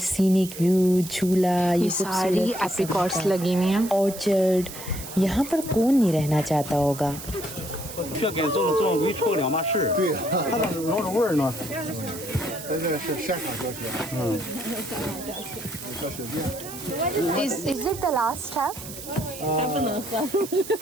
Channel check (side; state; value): right; noise; hiss, 12 dB below the sound